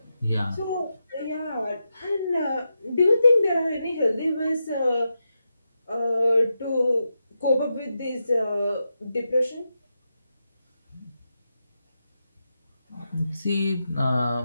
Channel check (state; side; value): inverted; both; correlation -0.87